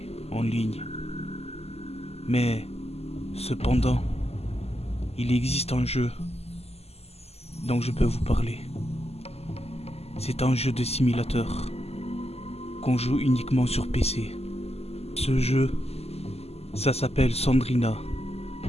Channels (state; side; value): late; right; 0.30 ms